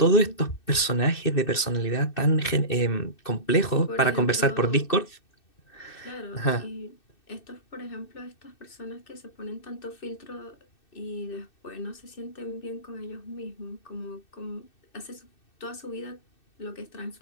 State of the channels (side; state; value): right; late; 2.6 ms